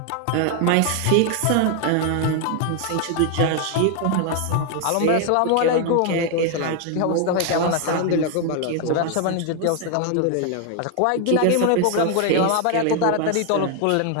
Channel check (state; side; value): different; both; correlation 0.00